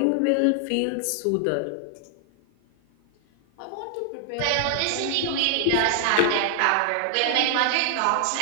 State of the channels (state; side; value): different; both; correlation 0.00